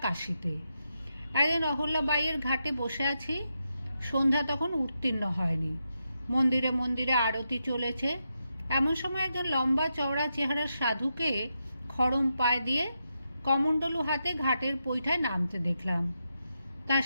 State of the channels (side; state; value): both; inverted; correlation -0.85